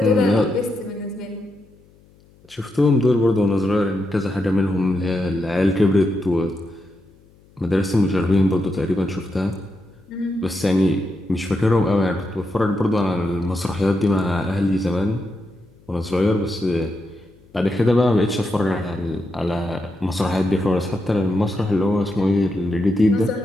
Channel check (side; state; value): left; noise; hum, 29 dB below the sound